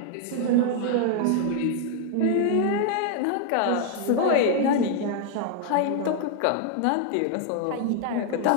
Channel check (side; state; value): both; different; correlation 0.00